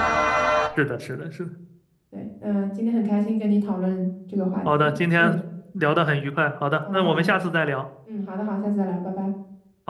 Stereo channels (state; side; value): identical; both; correlation 1.00